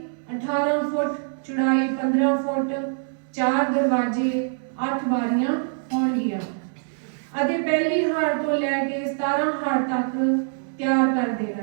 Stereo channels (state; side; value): silent; left; digital silence